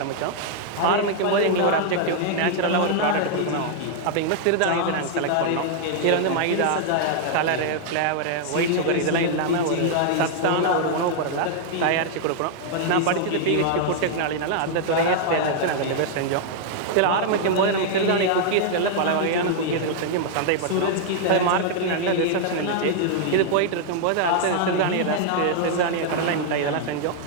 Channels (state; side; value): different; both; correlation -0.01